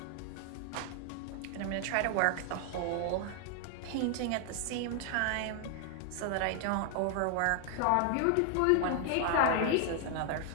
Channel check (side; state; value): both; different; correlation 0.00